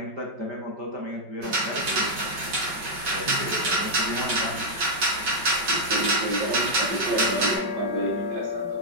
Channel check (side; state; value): left; late; 5.3 ms